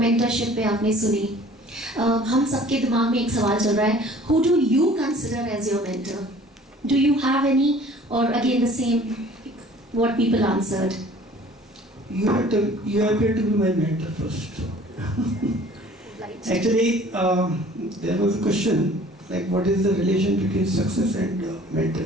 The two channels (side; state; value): both; normal; correlation 0.50